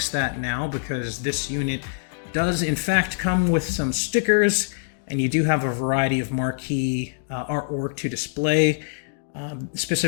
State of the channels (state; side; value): silent; right; digital silence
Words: that now because this unit does in fact come with some stickers, and you do have a variety of marquee artwork to display.